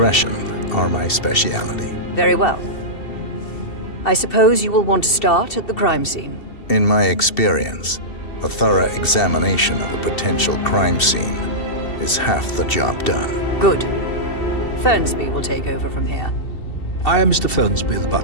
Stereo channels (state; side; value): late; right; 2.7 ms